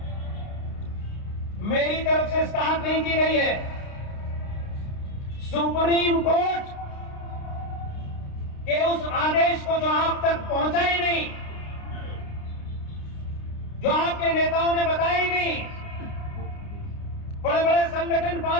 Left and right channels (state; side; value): late; right; 29 ms